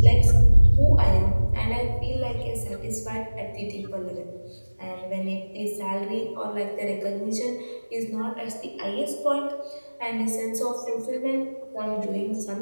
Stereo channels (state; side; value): inverted; both; correlation -1.00